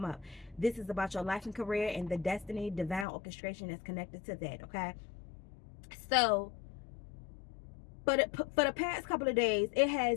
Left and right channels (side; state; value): right; drops out; at 3.1 s